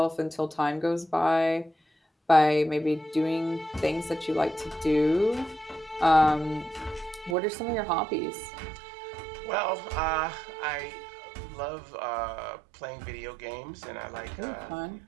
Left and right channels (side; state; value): left; drops out; at 7.4 s